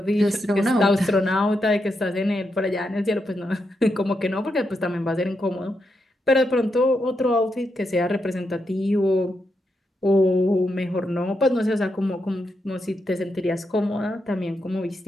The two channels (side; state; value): both; normal; correlation 0.84